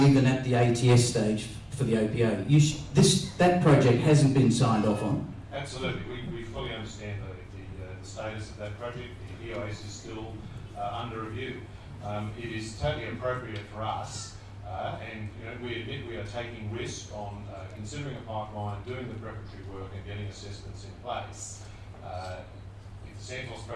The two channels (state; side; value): identical; both; correlation 1.00